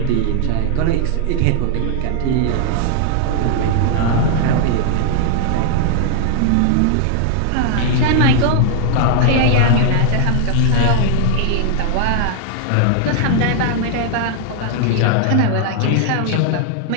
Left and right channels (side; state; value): both; different; correlation 0.00